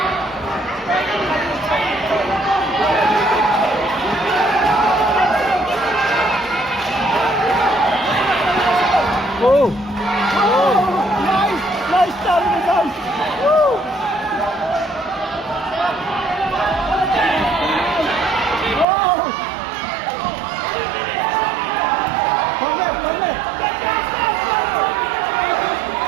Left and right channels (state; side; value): drops out; left; at 18.9 s